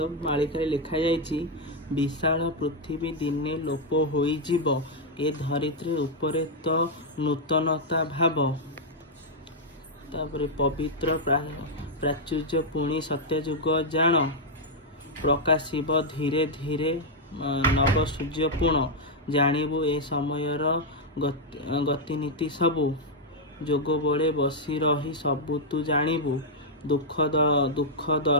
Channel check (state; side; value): normal; both; correlation -0.02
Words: मालिकारे लिखा जाइछि विशाल पृथ्वी दिने लोप होइजिब ए धरित्री उपरे तो नूतनता भाव तापरे पवित्र प्राचुर्य पुणी सत्यजुग जान प्रकाशिब धीरे धीरे नव सूर्य पूर्ण जानिबु ए समयर गतिनीति सबु जोग बड़े बसी रही सबु तू जानिबु दुख